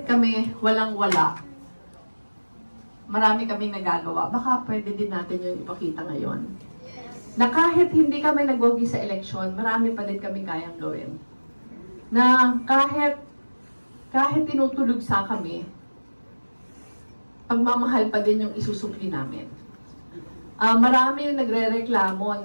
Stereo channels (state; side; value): inverted; both; correlation -1.00